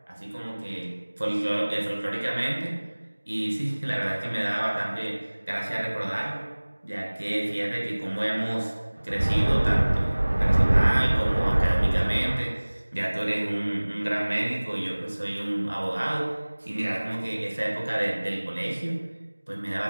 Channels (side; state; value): both; inverted; correlation -1.00